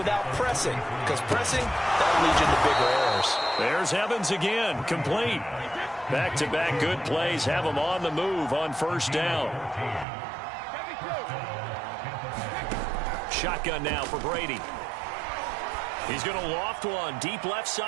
pressing, because pressing, that'll lead you into bigger errors. There's Evans again, complete. Back-to-back good plays have him on the move on first down. Shotgun now for Brady. He's going to loft one deep left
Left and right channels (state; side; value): drops out; left; at 10.1 s